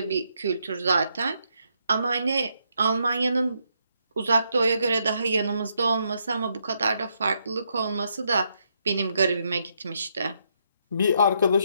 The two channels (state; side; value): inverted; both; correlation -0.77